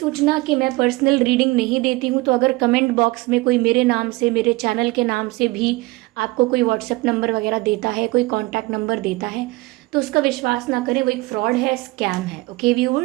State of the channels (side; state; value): left; quieter; 21.8 dB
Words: कि मैं पर्सनल रीडिंग नहीं देती हूँ, तो अगर कमेंट बॉक्स में कोई मेरे नाम से, मेरे चैनल के नाम से भी आपको कोई व्हाट्सएप नंबर वगैरह देता है, कोई कॉन्टैक्ट नंबर देता है, तो उसका विश्वास ना करें, वो एक फ्रॉड है, स्कैम है। ओके